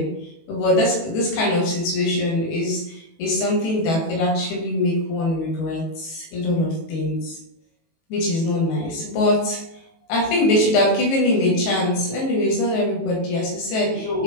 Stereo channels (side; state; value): right; late; 18 ms